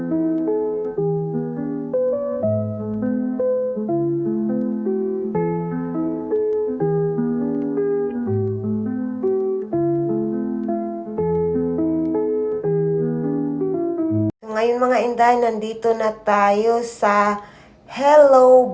Ngayon mga Inday, nandito na tayo sa Hello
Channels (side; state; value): both; identical; correlation 1.00